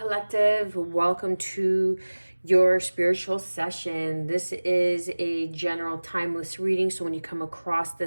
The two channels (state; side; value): inverted; both; correlation -1.00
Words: Welcome to your spiritual session. This is a general timeless reading. So when you come across